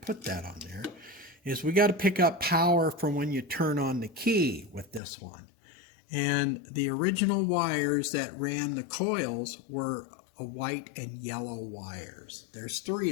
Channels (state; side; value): drops out; right; at 5.0 s